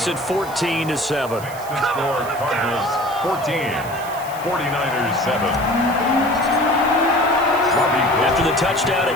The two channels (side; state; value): right; noise; hiss, 16 dB below the sound